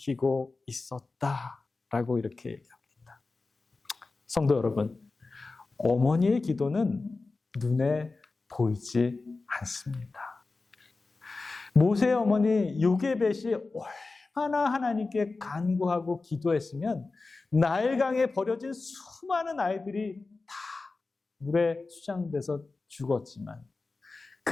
있었다라고 이렇게 얘기합니다. 성도 여러분, 어머니의 기도는 눈에 보이지 않습니다. 모세의 어머니 요게벳이 얼마나 하나님께 간구하고 기도했으면 나일강에 버려진 수많은 아이들이 다 물에 수장돼서 죽었지만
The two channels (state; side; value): quieter; right; 3.7 dB